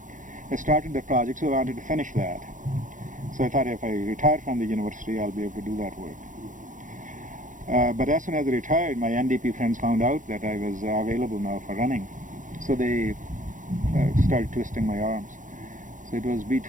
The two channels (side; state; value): left; late; 0.37 ms